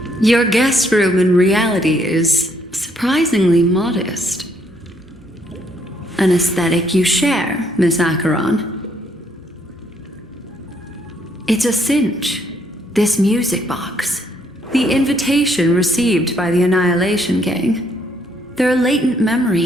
Your guest room in reality is surprisingly modest. An aesthetic you share, Miss Acheron. It's a cinch, this music box. The invitation received by the Annihilation Gang. There are latent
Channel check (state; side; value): normal; both; correlation 0.70